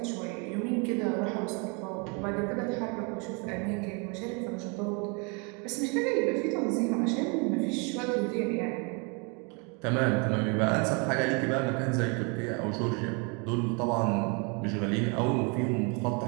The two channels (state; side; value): quieter; left; 33.3 dB